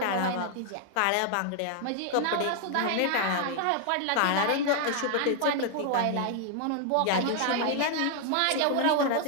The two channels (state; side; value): different; both; correlation 0.00